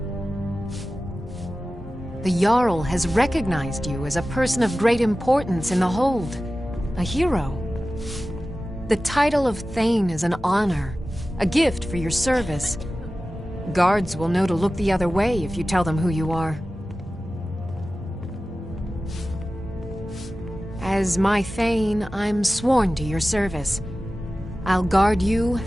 The Jarl has recognized you as a person of great importance in the Hold. A hero. The title of Thane is an honor, a gift for your service. Guards will know to look the other way if you tell them who you are. As my Thane, I'm sworn to your service. I'll guard you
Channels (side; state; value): both; normal; correlation 0.95